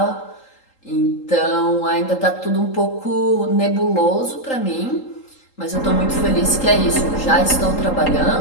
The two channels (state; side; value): late; right; 3.8 ms